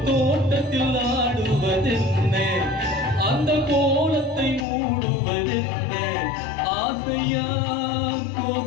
தோட்டத்தில் ஆடுவதென்ன? அந்த கோலத்தை மூடுவதென்ன? ஆசையா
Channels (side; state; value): right; drops out; at 4.7 s